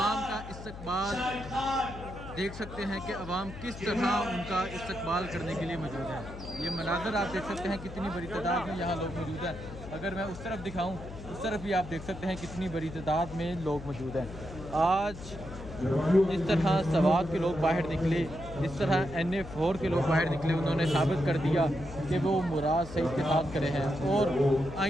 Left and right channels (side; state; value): left; noise; hum, 12 dB below the sound